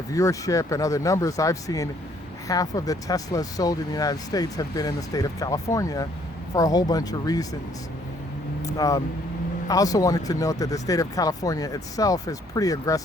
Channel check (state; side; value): normal; both; correlation 0.64